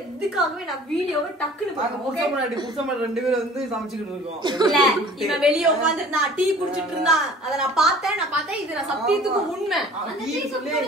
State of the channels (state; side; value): normal; both; correlation 0.47